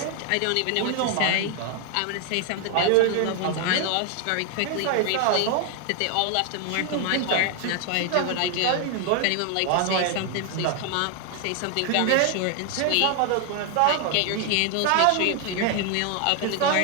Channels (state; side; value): different; both; correlation 0.01